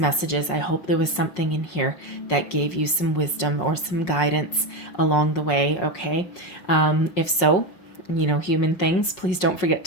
I hope there was something in here that gave you some wisdom or some guidance along the way. Okay. If so, human things, please don't forget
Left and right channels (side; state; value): right; late; 5.5 ms